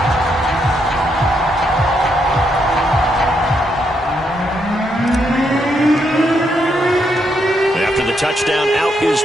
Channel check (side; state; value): both; normal; correlation 0.78